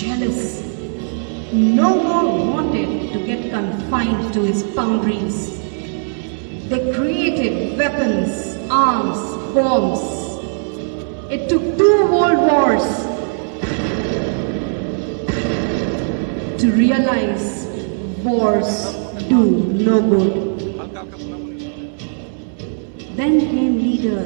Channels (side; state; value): left; silent; 67 dB below the other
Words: No more wanted to get confined to his boundaries. They created weapons, arms, bombs. It took 2 world wars to realize wars do no good. Then came